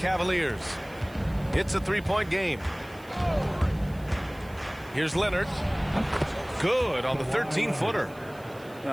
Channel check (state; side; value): noise; right; hiss, 25 dB below the sound